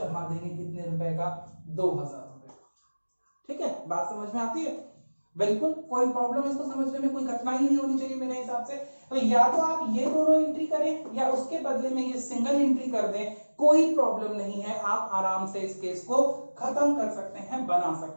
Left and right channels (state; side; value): inverted; both; correlation -1.00